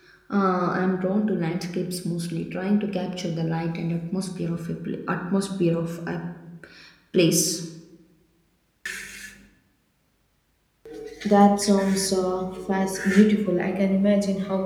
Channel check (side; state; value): both; identical; correlation 1.00